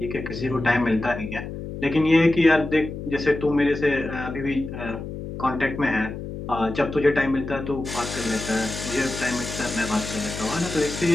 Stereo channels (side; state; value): left; noise; hum, 8 dB below the sound